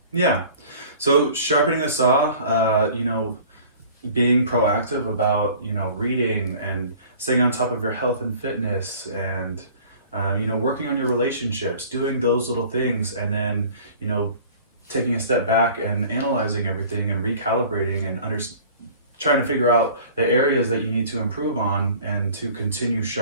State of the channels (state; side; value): inverted; both; correlation -0.47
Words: Yeah, so sharpening the saw, being proactive about, reading and staying on top of your health and fitness and, working on your relationships, doing those little things, and then, taking a step back and analyzing everything and recalibrating and trying to figure out the areas that you need to improve on and to continue